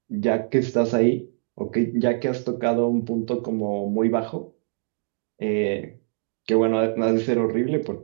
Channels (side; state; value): left; silent; digital silence